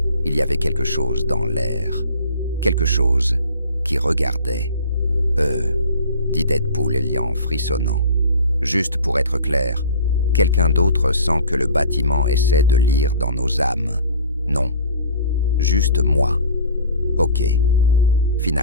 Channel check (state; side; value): inverted; both; correlation -0.44